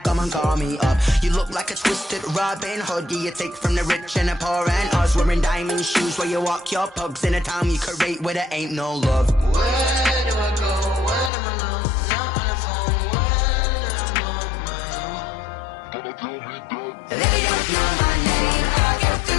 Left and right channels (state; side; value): drops out; right; at 11.3 s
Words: come and call me up. You look like a twisted Robin Hood. You take from the rich and the poor and us. Wearing diamond shoes where you walk your pugs in a town you create where there ain't no love. Where do I go? When I'm alone? Not on the phone. When I'm on my own. They don't know my name. I get